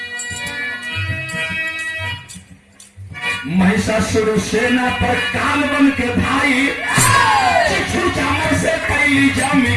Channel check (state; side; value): identical; both; correlation 1.00